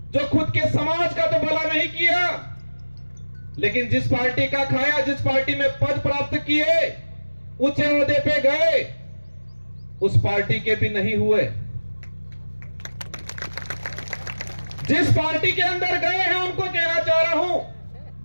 जो खुद के समाज का तो भला नहीं किया, लेकिन जिस पार्टी का खाया, जिस पार्टी में पद प्राप्त किए, ऊंचे ओहदे पे गए, उस पार्टी के भी नहीं हुए। जिस पार्टी के अंदर गए हैं उनको कहना चाह रहा हूं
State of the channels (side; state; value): both; inverted; correlation -1.00